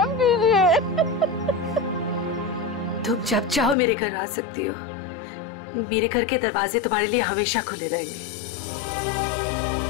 कीजिए। तुम जब चाहो मेरे घर आ सकती हो। मेरे घर के दरवाजे तुम्हारे लिए हमेशा खुले रहेंगे।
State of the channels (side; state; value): right; drops out; at 3.8 s